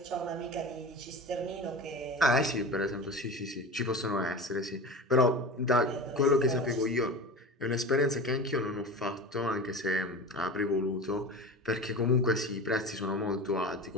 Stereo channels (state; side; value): normal; both; correlation 0.31